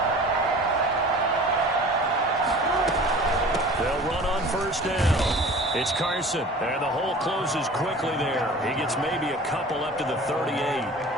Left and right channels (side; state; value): both; normal; correlation 0.42